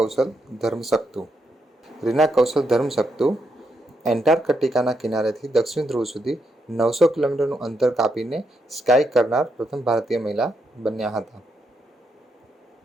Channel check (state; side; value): normal; both; correlation 0.81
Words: ધર્મશક્તુ. રીના કૌશલ ધર્મશક્તુ એન્ટાર્કટિકાના કિનારેથી દક્ષિણ ધ્રુવ સુધી 900 કિલોમીટરનું અંતર કાપીને સ્કાય કરનાર પ્રથમ ભારતીય મહિલા બન્યા હતા.